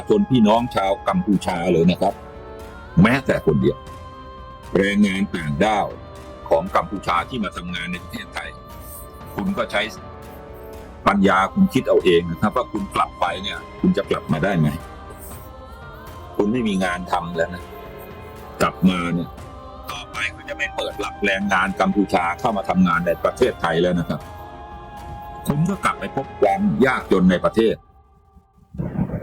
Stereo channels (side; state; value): both; identical; correlation 1.00